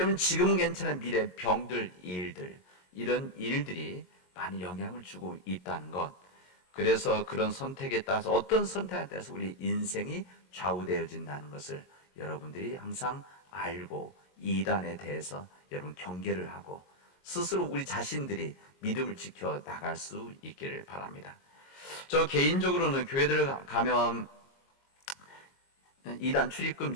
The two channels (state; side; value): late; right; 22 ms